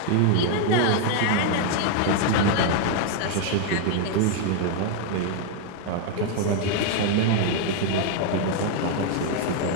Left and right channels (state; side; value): different; both; correlation 0.00